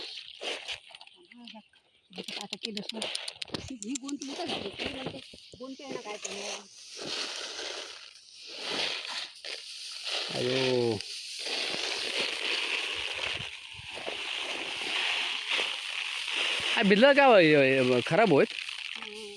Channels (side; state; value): both; identical; correlation 1.00